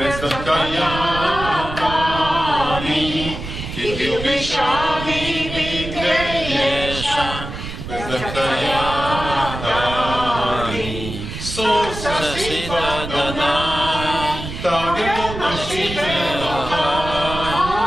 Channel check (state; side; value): noise; right; rumble, 8 dB below the sound